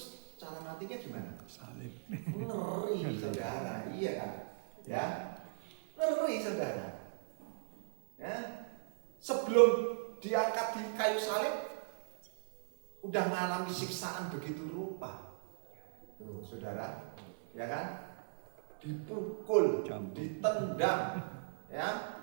cara matinya gimana? Salib. Ngeri saudara, iya kan? Ya, ngeri saudara. Ya, sebelum diangkat di kayu salib, udah mengalami siksaan begitu rupa. Tuh, saudara, ya kan? Dipukul, ditendang, ya,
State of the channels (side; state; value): left; silent; 53 dB below the other